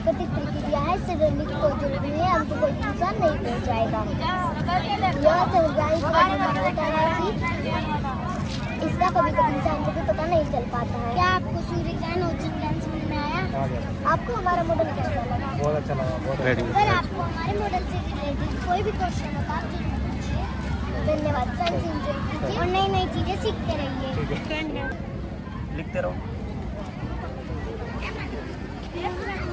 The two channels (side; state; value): both; identical; correlation 1.00